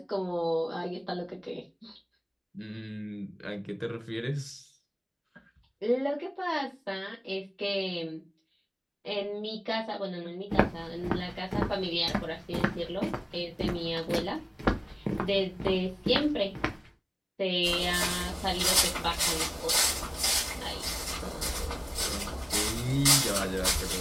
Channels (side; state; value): both; identical; correlation 1.00